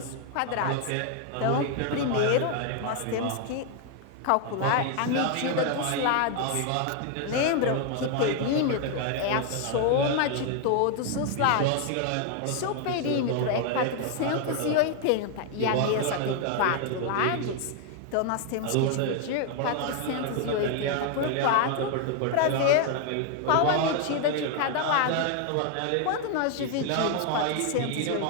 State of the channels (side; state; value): both; different; correlation 0.01